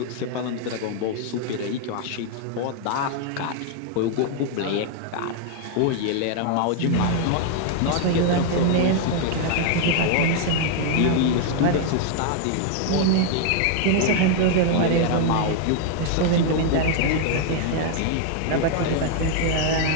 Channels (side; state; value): both; different; correlation 0.00